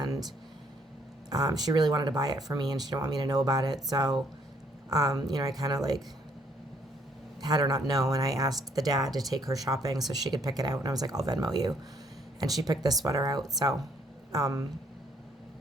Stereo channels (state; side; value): normal; both; correlation 0.66